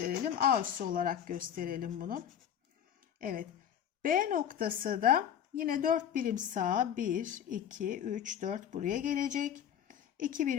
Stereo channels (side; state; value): right; quieter; 9.4 dB